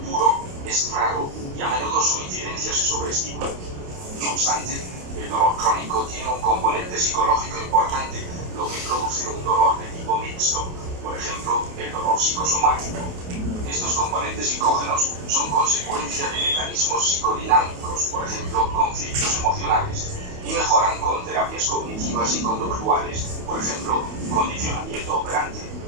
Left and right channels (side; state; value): left; late; 28 ms